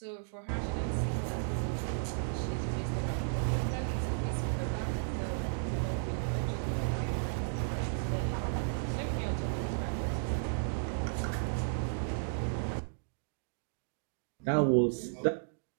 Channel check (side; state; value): left; silent; digital silence